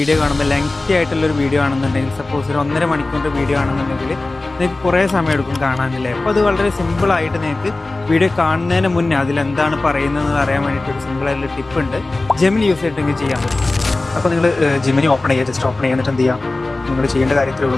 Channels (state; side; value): quieter; right; 3.1 dB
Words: കാണുമ്പോൾ ലെങ്തി ആയിട്ടുള്ളൊരു വീഡിയോ ആണെന്നുണ്ടെങ്കിൽ, സപ്പോസ് ഒരു 1.5 മണിക്കൂറിൻ്റെ വീഡിയോ ആണെന്നുണ്ടെങ്കിൽ നിങ്ങൾക്ക് കുറേ സമയം എടുക്കും കാണാനില്ലേ. അപ്പോൾ അത് വളരെ സിമ്പിളായിട്ട് നിങ്ങൾക്ക് വീഡിയോ കാണുന്നതിന് മുന്നേ അതിലെന്താണ് പറയുന്നതെന്ന് അറിയാൻ വേണ്ടിയിട്ട് ഒരു സിമ്പിളായിട്ടുള്ള ടിപ്പ് ഉണ്ട്. ജെമിനി യൂസ് ചെയ്തിട്ടെങ്കിൽ ചെയ്യാൻ പറ്റും. അപ്പോൾ നിങ്ങൾ ജെമിനി ഓപ്പൺ ചെയ്യുക, ജസ്റ്റ് ഓപ്പൺ ചെയ്യുന്നിട്ട് എന്ത് ചെയ്യുക, നിങ്ങൾ ചെയ്യേണ്ട കാര്യത്തിലേ